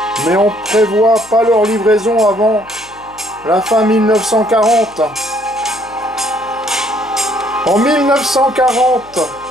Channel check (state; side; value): noise; left; hum, 27 dB below the sound